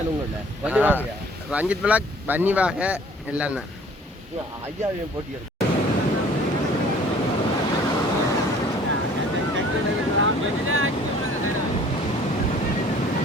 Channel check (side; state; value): both; normal; correlation 0.53